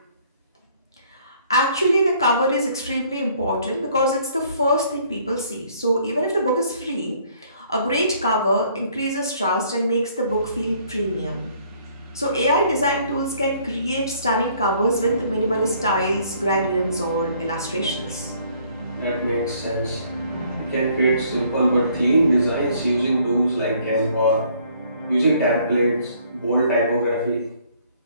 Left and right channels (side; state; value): both; inverted; correlation -0.62